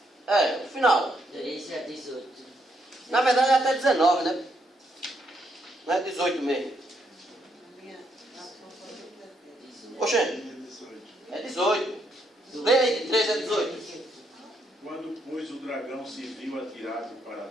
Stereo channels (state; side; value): normal; both; correlation 0.75